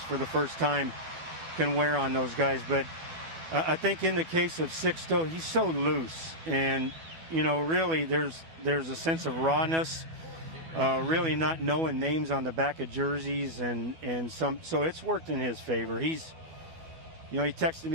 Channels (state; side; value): late; left; 12 ms